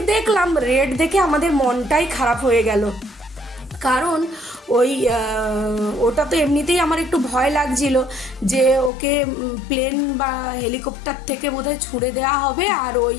দেখলাম, রেট দেখে আমাদের মনটাই খারাপ হয়ে গেল। কারণ ওই ওটা তো এমনিতেই আমার একটু ভয় লাগছিল যে ওকে প্লেন বা হেলিকপ্টার থেকে বোধহয় ছুঁড়ে দেওয়া হবে, আর ওই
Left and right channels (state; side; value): drops out; right; at 8.9 s